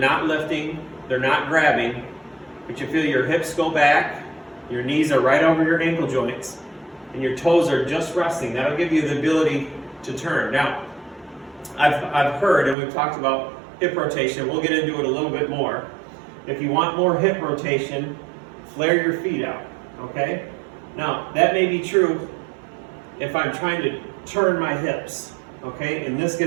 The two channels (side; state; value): left; drops out; at 12.8 s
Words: lifting, they're not grabbing, but you feel your hips go back, your knees are right over your ankle joints, and your toes are just resting. That'll give you the ability to turn. Now, I've heard, and we've talked about hip rotation, we'll get into it a little bit more. If you want more hip rotation, flare your feet out, okay? Now, that may be true if I'm trying to turn my hips, okay? And this